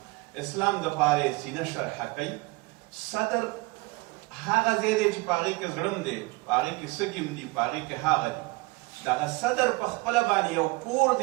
اسلام د پاره سینه شرح کوي. صدر هغه ځای دی چې په هغې کې زړه دی، په هغې کې سږي دي، په هغې کې هغه دي. دغه صدر په خپله باندې یو کور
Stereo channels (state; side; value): quieter; left; 24.2 dB